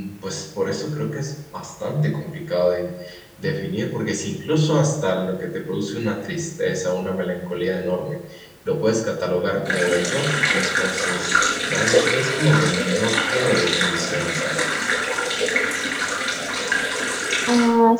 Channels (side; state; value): both; identical; correlation 1.00